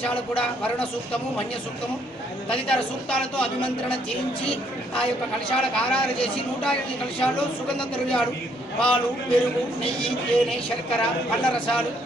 కూడా వరుణ సూక్తము, మన్య సూక్తము తదితర సూక్తాలతో అభిమంత్రణ చేయించి ఆ యొక్క కలశాలకు ఆరాధన చేసి 108 కలశాల్లో సుగంధ ద్రవ్యాలు, పాలు, పెరుగు, నెయ్యి, తేనె, శర్కర, పళ్ళ రసాలు,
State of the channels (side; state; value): both; normal; correlation 0.69